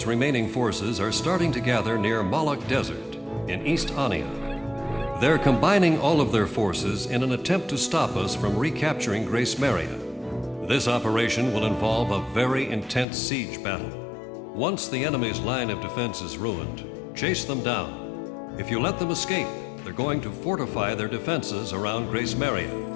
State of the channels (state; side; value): drops out; right; at 13.1 s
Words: remaining forces are starting to gather near Malak Desert in East Ania. They're combining all of their forces in an attempt to stop us from recapturing Grace Maria. This operation will involve a very intense siege battle. Once the enemy's line of defense is ruined, chase them down. If you let them escape, they're going to fortify their defenses around Grace Maria.